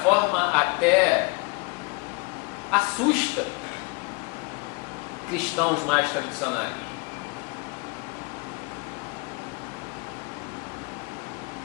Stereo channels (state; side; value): quieter; right; 28.5 dB